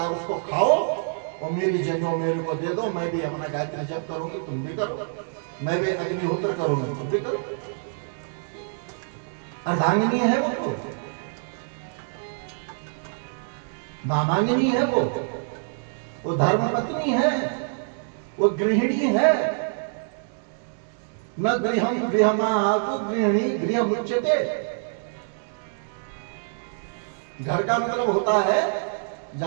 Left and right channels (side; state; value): left; silent; digital silence